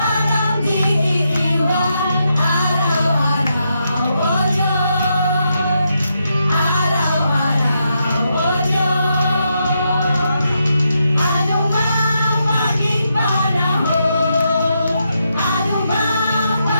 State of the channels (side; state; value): both; inverted; correlation -0.82